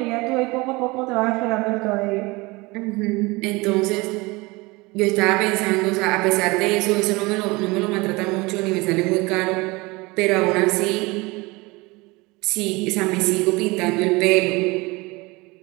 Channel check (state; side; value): quieter; left; 23.8 dB